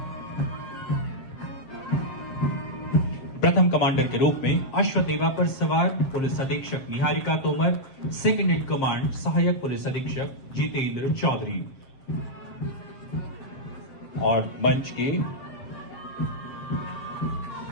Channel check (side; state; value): right; late; 7.6 ms